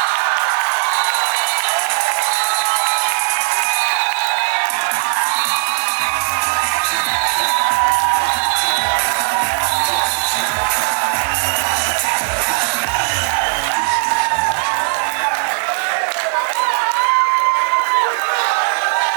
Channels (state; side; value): silent; left; digital silence